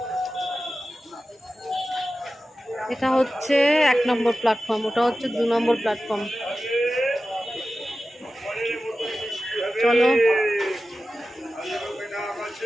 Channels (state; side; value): normal; both; correlation 0.94